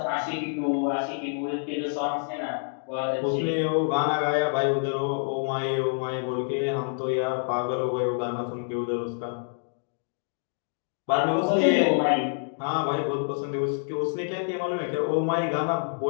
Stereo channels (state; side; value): silent; right; digital silence